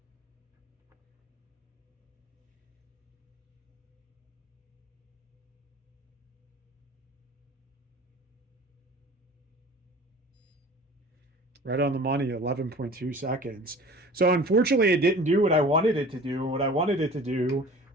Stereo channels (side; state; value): both; normal; correlation 0.43